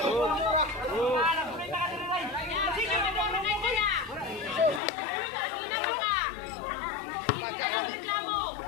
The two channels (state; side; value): drops out; right; at 4.8 s